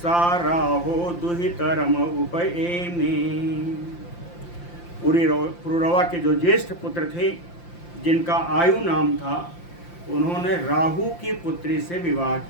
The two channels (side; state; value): right; late; 5.8 ms